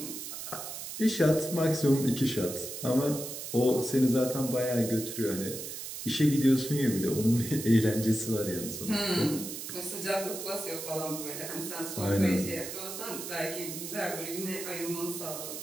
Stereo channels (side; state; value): right; noise; hiss, 8 dB below the sound